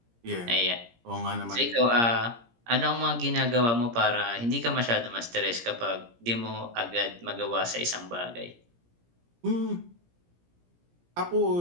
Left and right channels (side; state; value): left; late; 17 ms